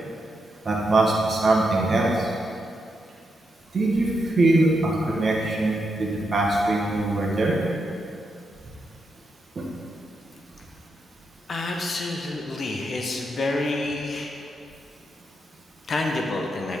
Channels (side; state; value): both; normal; correlation 0.83